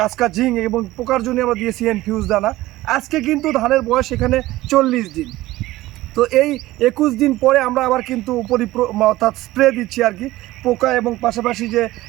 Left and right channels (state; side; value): quieter; left; 17.1 dB